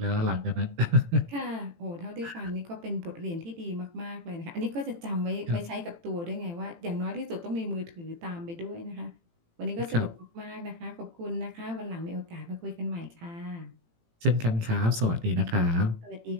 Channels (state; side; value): late; left; 18 ms